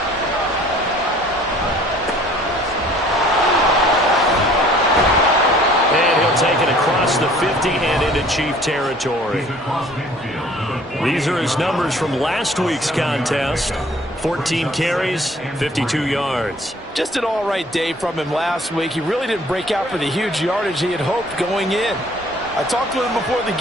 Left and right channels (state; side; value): normal; both; correlation 0.54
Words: And he'll take it across the 50 and into Chief territory. These are his numbers from last week's contest. 14 carries, 52 yards. Just an all-right day from him last week. He really didn't break out for the huge yardage he had hoped going in. I talked to him before the